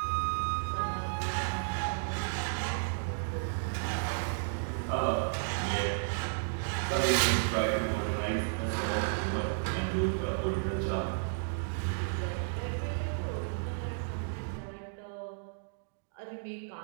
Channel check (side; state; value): left; silent; digital silence